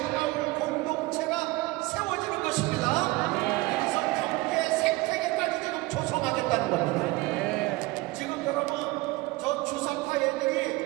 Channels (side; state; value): left; quieter; 21.2 dB